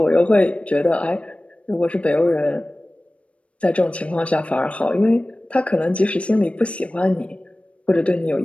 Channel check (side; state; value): right; late; 0.062 ms